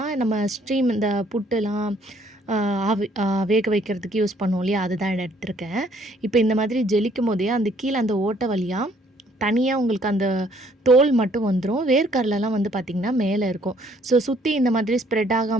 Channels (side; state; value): both; normal; correlation 0.64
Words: நம்ம ஸ்ட்ரீம் இந்த புட்டுலாம் வேக வைக்கிறதுக்கு யூஸ் பண்ணுவோம் இல்லையா, அதுதான் எடுத்திருக்கேன். இப்போ இந்த மாதிரி ஜெலிக்கும் போதே அந்த கீழே அந்த ஓட்டை வழியாக தனியாக உங்களுக்கு அந்த தோல் மட்டும் வந்துடும். வேர்க்கடலைலாம் வந்து பார்த்திங்கன்னா மேலே இருக்கும். ஸோ சுற்றி இந்த மாதிரி ஸ்ப்ரெட்